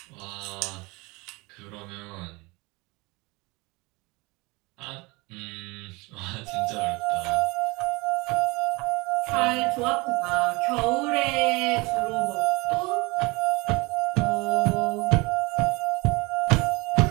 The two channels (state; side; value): quieter; left; 25.1 dB